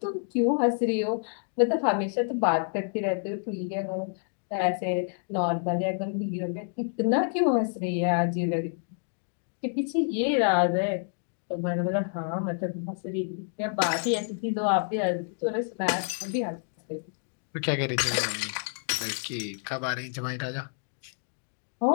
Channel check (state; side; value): silent; right; 59 dB below the other